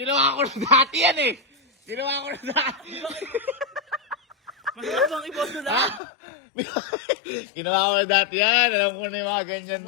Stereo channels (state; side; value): drops out; right; at 6.0 s